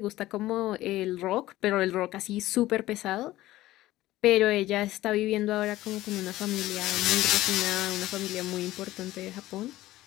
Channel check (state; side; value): quieter; right; 16.1 dB